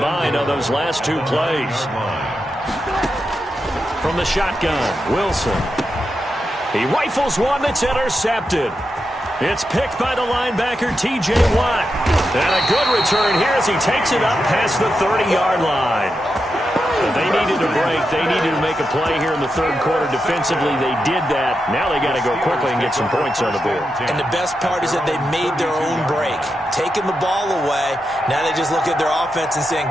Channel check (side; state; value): both; normal; correlation 0.87